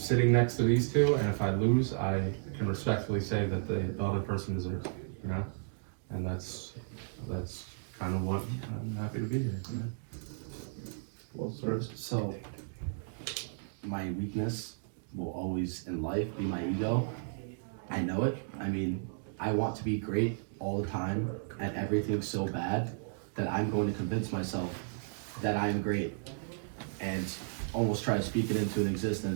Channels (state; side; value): silent; left; digital silence